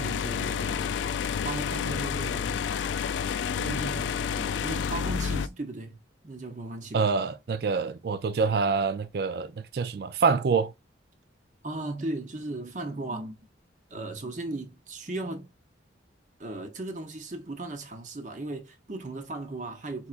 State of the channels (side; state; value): both; normal; correlation 0.14